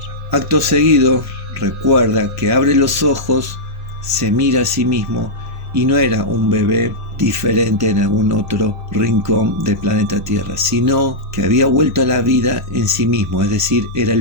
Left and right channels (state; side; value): normal; both; correlation -0.10